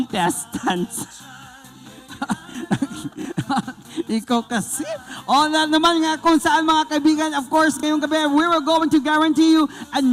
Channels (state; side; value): identical; both; correlation 1.00